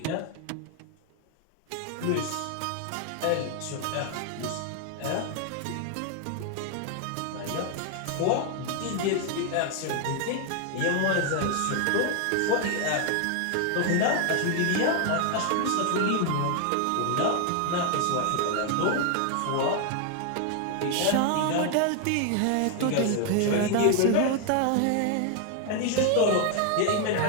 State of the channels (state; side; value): different; both; correlation 0.00